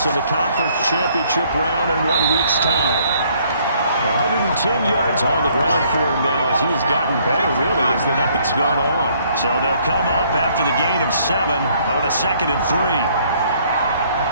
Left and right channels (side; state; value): both; inverted; correlation -0.64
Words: in the conference championship round in 1 week's time. 110 yards on the ground for him now as he's gotten better, really, as the night's gone on. So they'll come up after the gain of 7 on a 2nd and 3.